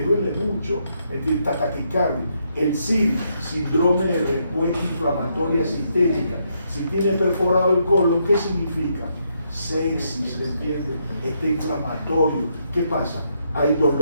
mucho, ¿entiendes? Taquicardia. El SID, síndrome de respuesta inflamatoria sistémica, si tiene perforado el colon, ¿qué significa? Sepsis, ¿entiendes? Está inflamatorio. ¿Qué pasa? Hay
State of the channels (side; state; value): both; inverted; correlation -0.77